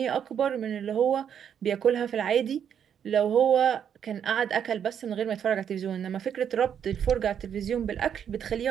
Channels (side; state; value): left; quieter; 8.4 dB